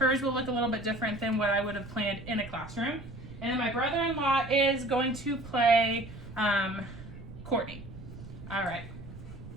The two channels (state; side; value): noise; right; rumble, 14 dB below the sound